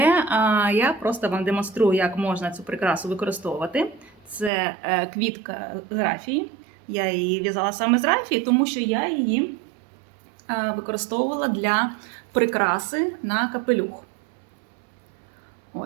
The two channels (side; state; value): left; drops out; at 4.5 s